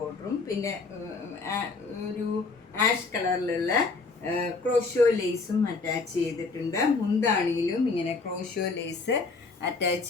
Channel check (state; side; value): quieter; right; 4.0 dB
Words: പിന്നെ ഒരു ആഷ് കളറിലുള്ള ക്രോഷോ ലേസും അറ്റാച്ച് ചെയ്തിട്ടുണ്ട്. മുന്താണിയിലും ഇങ്ങനെ ക്രോഷോ ലേസ് അറ്റാച്ച്